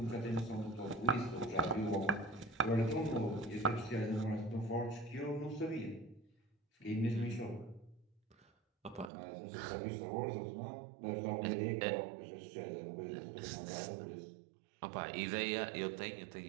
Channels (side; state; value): left; drops out; at 9.1 s